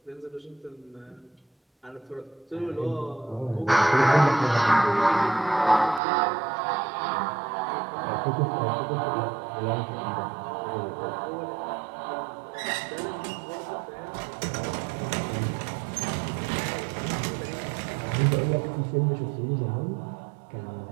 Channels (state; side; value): drops out; left; at 6.0 s